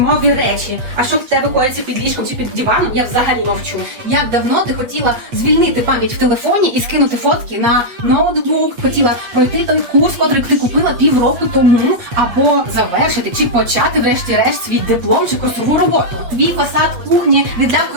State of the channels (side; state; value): left; late; 8.3 ms